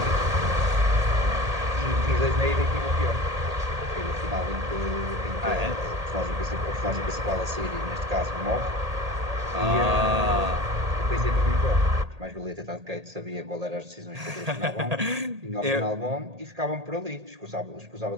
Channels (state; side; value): late; left; 1.8 ms